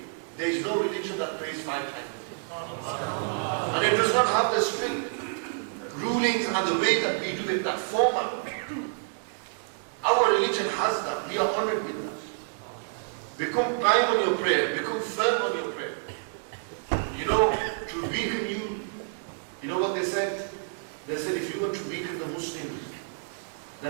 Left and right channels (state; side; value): silent; left; digital silence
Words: There is no religion that prays 5 times a day. And it does not have the strict rulings and the way that we do it, that format. Our religion has that. We are honored with that. Become prime on your prayer. Become firm on your prayer. You know, to weaken you, you know what they said? They said if you want to weaken the Muslims,